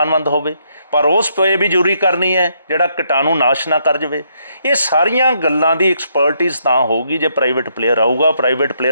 ਹੋਵੇ, ਪਰ ਉਹ ਸਪਰੇਅ ਵੀ ਜ਼ਰੂਰੀ ਕਰਨੀ ਹੈ ਜਿਹੜਾ ਕੀਟਾਣੂ ਨਾਸ਼ ਨਾ ਕਰ ਜਾਵੇ। ਇਹ ਸਾਰੀਆਂ ਗੱਲਾਂ ਦੀ ਐਕਸਪਰਟੀਜ਼ ਤਾਂ ਹੋਊਗੀ ਜੇ ਪ੍ਰਾਈਵੇਟ ਪਲੇਅਰ ਆਊਗਾ। ਪ੍ਰਾਈਵੇਟ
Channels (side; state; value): both; inverted; correlation -0.74